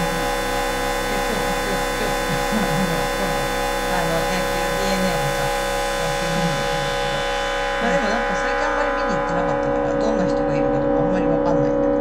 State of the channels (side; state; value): both; identical; correlation 1.00